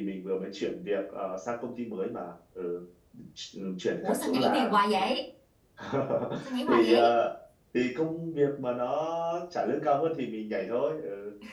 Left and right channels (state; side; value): identical; both; correlation 1.00